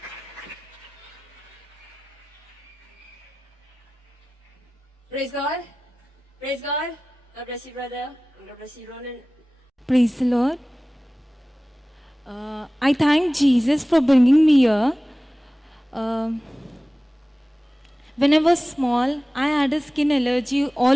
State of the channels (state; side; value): normal; both; correlation 0.97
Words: Praise God. Praise God. God bless you, brother. And God bless you, Ronan. Praise the Lord. I thank Jesus for bringing me here. When I was small, I had a skin allergy